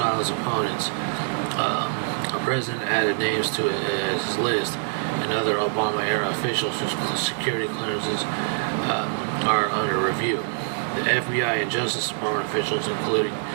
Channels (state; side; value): silent; left; digital silence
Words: opponents, the president added names to his list and other Obama-era officials whose security clearances are under review. The FBI and Justice Department officials, including